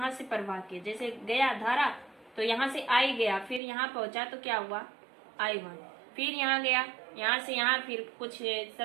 से प्रवाह की, जैसे गया धारा तो यहाँ से I गया, फिर यहाँ पहुंचा तो क्या हुआ I1। फिर यहाँ गया, यहाँ से यहाँ फिर कुछ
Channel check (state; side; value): drops out; left; at 3.6 s